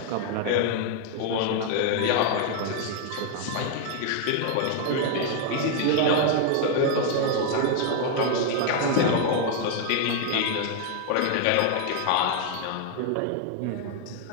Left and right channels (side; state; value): both; different; correlation 0.00